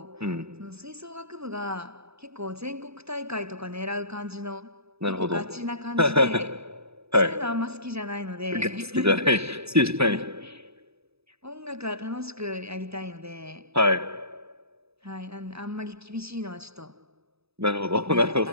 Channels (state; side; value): late; left; 0.79 ms